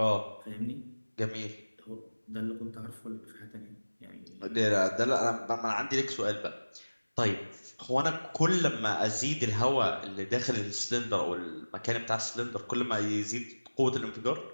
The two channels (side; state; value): both; inverted; correlation -1.00